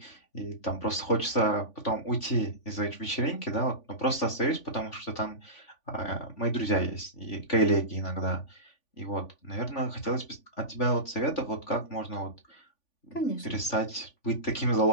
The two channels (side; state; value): right; late; 3.5 ms